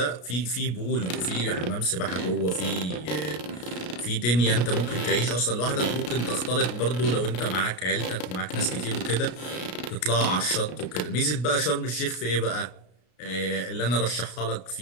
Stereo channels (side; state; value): right; late; 33 ms